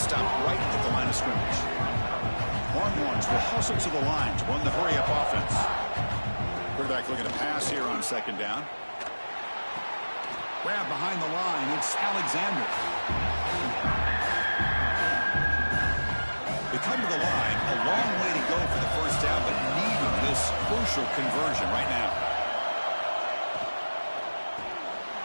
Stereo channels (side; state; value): both; inverted; correlation -1.00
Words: Stop right at the line of scrimmage. Longhorns will hustle to the line to run the hurry-up offense. Quarterback looking to pass here on 2nd down. Grab behind the line. It's Alexander. They come to the line. A long way to go for the first down, but needing this crucial conversion right now.